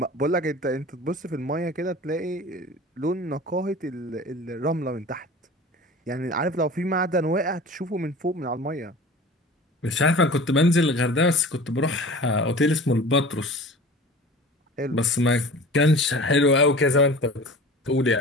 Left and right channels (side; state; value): both; normal; correlation 0.39